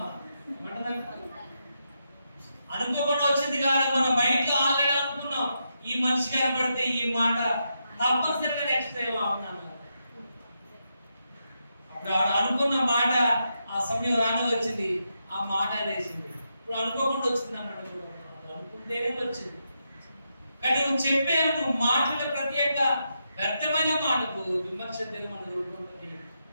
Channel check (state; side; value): inverted; both; correlation -0.83